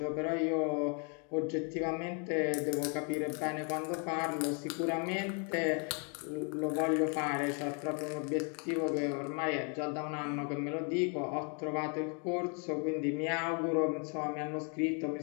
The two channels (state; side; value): quieter; right; 38.0 dB